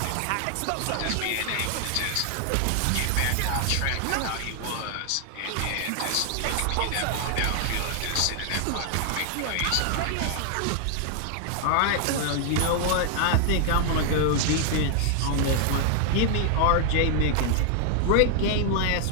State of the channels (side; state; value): both; different; correlation 0.00